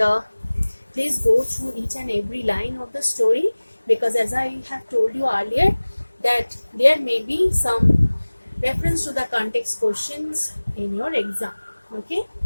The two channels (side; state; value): both; inverted; correlation -1.00